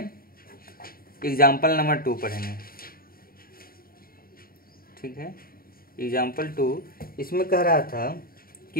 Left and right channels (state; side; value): late; right; 0.43 ms